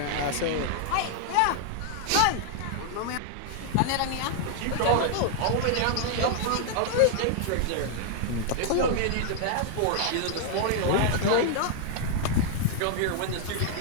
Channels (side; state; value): both; different; correlation 0.00